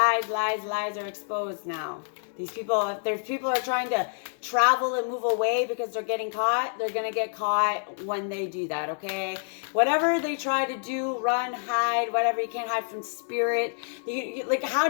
are exposed now. These people, if there's people are trying to travel and move away because they're getting caught, they're going to get caught when they do that, okay? Whatever they try to do, run, hide, whatever, you can't hide from spirit. Like, how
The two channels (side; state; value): right; silent; 58 dB below the other